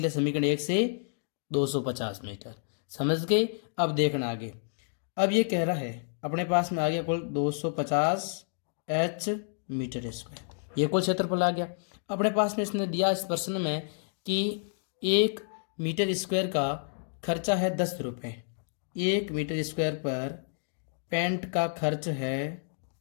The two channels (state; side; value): silent; right; digital silence